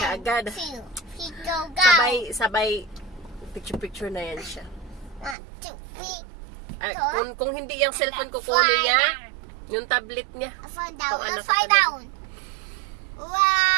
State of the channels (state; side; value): drops out; left; at 5.4 s